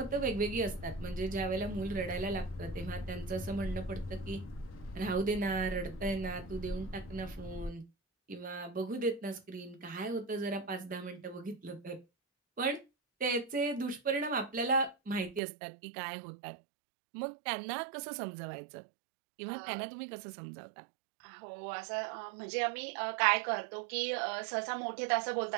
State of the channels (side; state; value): left; drops out; at 15.4 s